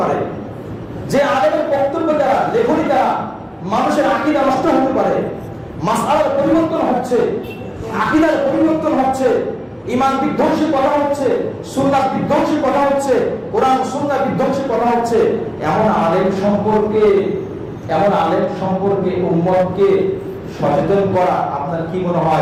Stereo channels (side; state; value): both; identical; correlation 1.00